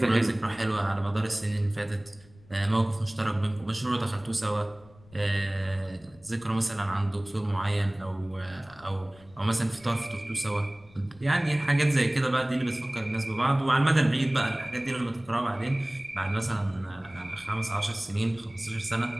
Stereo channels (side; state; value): left; noise; rumble, 25 dB below the sound